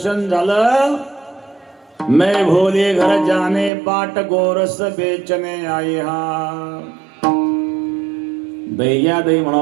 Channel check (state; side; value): drops out; left; at 3.7 s